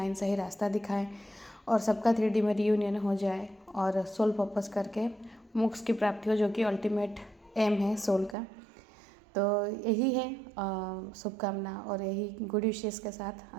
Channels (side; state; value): left; drops out; at 8.3 s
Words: सही रास्ता दिखाएं, और सबका 3D में रियूनियन हो जाए और सोल पर्पस करके मोक्ष की प्राप्ति हो, जो कि अल्टीमेट एम है सोल का। तो यही है शुभकामना और यही गुड विशेस के साथ